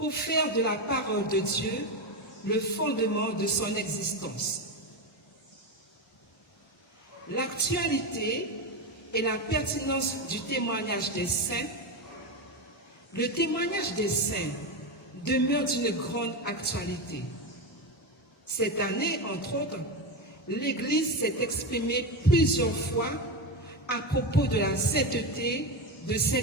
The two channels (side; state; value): both; normal; correlation 0.15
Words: faire de la parole de Dieu le fondement de son existence. L'actualité et la pertinence du témoignage des saints. Le témoignage des saints demeure d'une grande actualité. Cette année, entre autres, l'Église s'est exprimée plusieurs fois à propos de la sainteté de